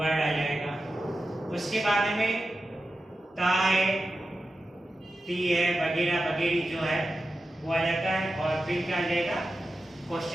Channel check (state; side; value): normal; both; correlation 0.92